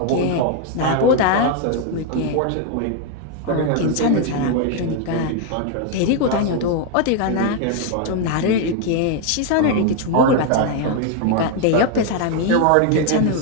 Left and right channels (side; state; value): both; different; correlation 0.01